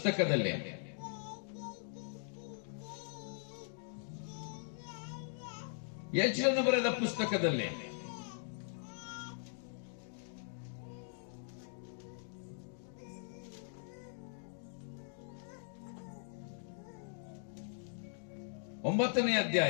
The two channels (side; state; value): right; silent; digital silence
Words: ಯಜ್ಞನು ಬರೆದ ಪುಸ್ತಕದಲ್ಲಿ ಒಂಬತ್ತನೇ